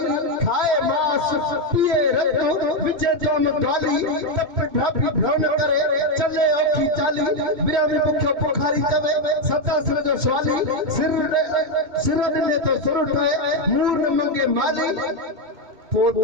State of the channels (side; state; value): left; late; 2.6 ms